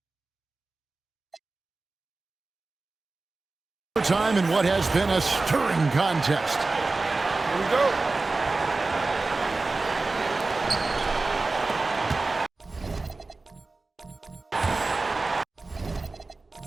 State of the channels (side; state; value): left; quieter; 3.5 dB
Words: Time in what has been a stirring contest. Here we go.